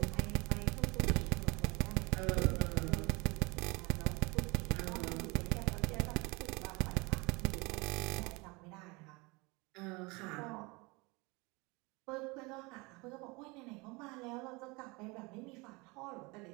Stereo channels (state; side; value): quieter; left; 26.4 dB